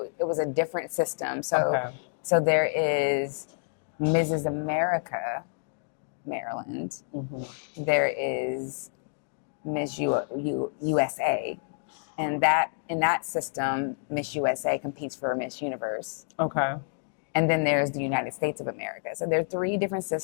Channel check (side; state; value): right; silent; digital silence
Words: it was a different system. So, Okay. so there is Mrs. America, Maryland. Mm-hmm. There is USA, and that in that system, Miss USA competes for Miss Universe. Okay. And then there's the United States of America. So there are 3 different